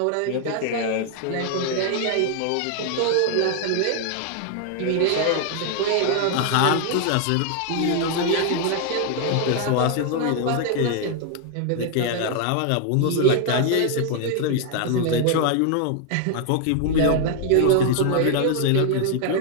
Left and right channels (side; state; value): both; different; correlation 0.00